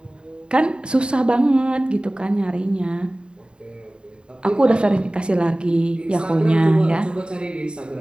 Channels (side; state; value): left; late; 0.051 ms